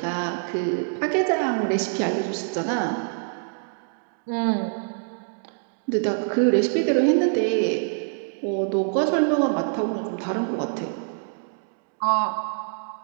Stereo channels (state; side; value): silent; left; digital silence